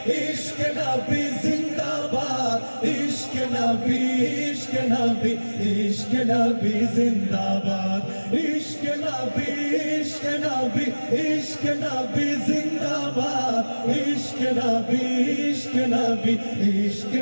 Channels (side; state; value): both; inverted; correlation -1.00